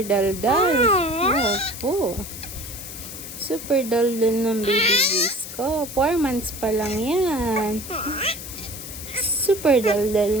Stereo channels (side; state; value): left; noise; hiss, 11 dB below the sound